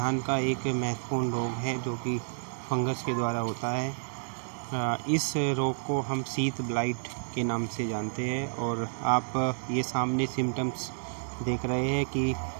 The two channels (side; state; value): left; silent; digital silence